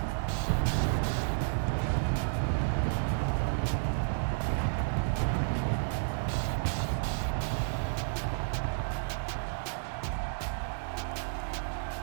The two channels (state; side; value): silent; left; digital silence